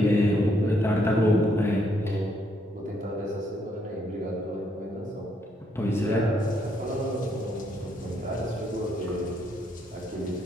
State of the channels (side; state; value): both; normal; correlation 0.73